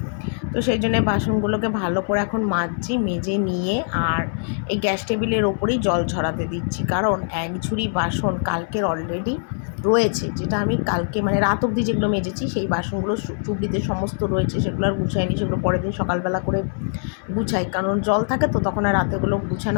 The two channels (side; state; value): right; silent; 60 dB below the other